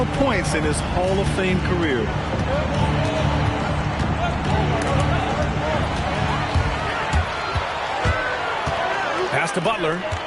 points in his Hall of Fame career. Pass to Butler.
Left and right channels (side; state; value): both; identical; correlation 1.00